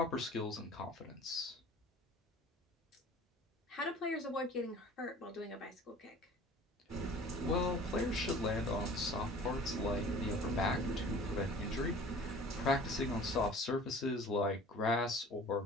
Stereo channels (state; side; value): normal; both; correlation 0.46